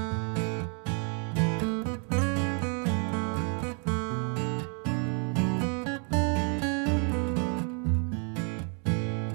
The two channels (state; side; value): quieter; left; 39.6 dB